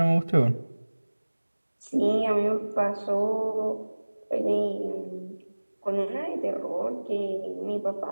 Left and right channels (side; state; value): both; inverted; correlation -1.00